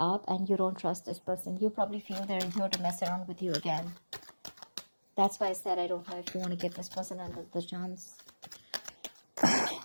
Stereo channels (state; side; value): inverted; both; correlation -1.00